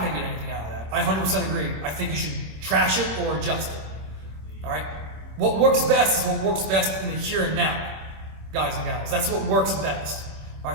going to get anything out of that. I 100% agree. I think you should trash it or adjust it. All right? What works best is what works best in the here and now, guys and gals. That's what works best. All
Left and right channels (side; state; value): left; late; 26 ms